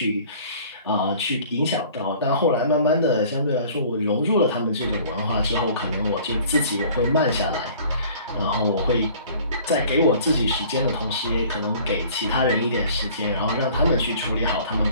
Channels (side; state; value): both; inverted; correlation -0.50